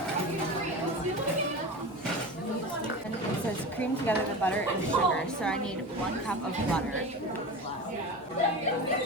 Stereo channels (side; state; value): both; normal; correlation 0.29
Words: And it says cream together the butter and sugar, so I need 1 cup of butter.